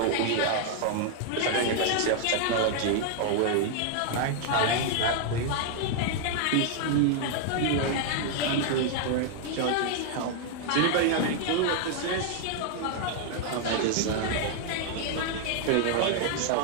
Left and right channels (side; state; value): both; different; correlation 0.00